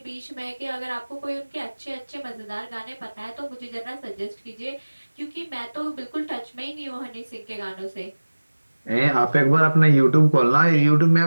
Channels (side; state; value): both; inverted; correlation -1.00